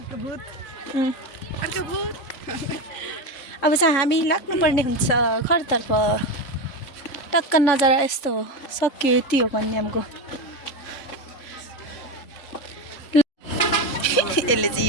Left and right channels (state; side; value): late; right; 2.9 ms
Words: अब चाहिँ हामी लाग्नुपर्ने हुन्छ घरतर्फ टक्क नजरा यस्तो हो सक्यो यति हो कन्यामको यसले चाहिँ